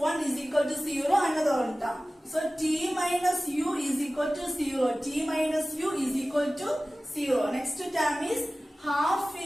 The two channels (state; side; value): normal; both; correlation 0.97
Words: is equal to 0. Another one term. So t minus u is equal to 0. T minus u is equal to 0. Next term is half